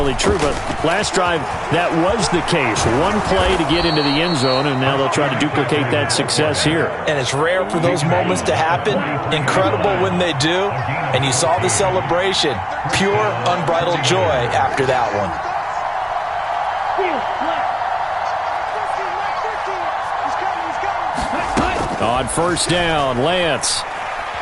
true, but last drive, that was the case. One play to get into the end zone, and now they'll try to duplicate that success here. And it's rare for those moments to happen. Incredible when they do. And you saw the celebration. Pure, unbridled joy after that one. On 1st down, Lance.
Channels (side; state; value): both; identical; correlation 1.00